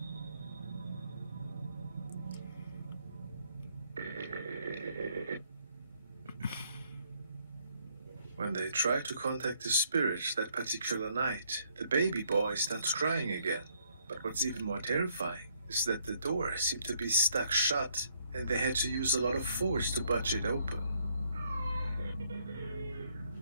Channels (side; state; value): both; inverted; correlation -0.68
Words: When they try to contact the spirit that particular night, the baby boy starts crying again. But what's even more terrifying is that the door seemed to be stuck shut, and they had to use a lot of force to budge it open.